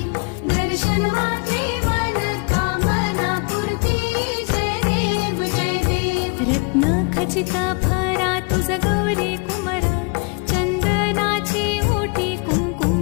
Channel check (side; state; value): right; quieter; 33.4 dB